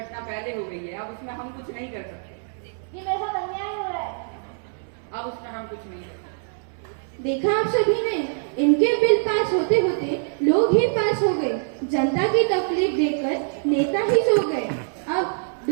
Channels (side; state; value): left; silent; 62 dB below the other